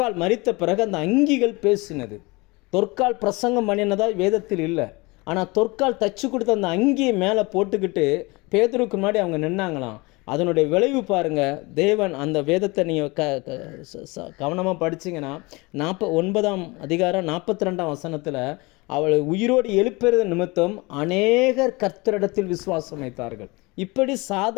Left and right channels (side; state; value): right; quieter; 25.1 dB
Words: மரித்த பிறகு அந்த அங்கிகள் பேசினது. தொற்கால் பிரசங்கம் பண்ணினதா வேதத்தில் இல்லை. ஆனால் தொற்கால் தச்சு கொடுத்த அந்த அங்கியை மேலே போட்டுக்கிட்டு பேதுருக்கு முன்னாடி அவங்க நின்னாங்களாம். அதனுடைய விளைவு பாருங்கள். தேவன் அந்த வேதத்தை நீங்கள் கவனமாக படிச்சிங்கன்னா 9ஆம் அதிகாரம் 42ஆம் வசனத்தில் அவளை உயிரோடு எழுப்புறது நிமித்தம் அநேகர் கர்த்தரிடத்தில் விசுவாசம் வைத்தார்கள். இப்படி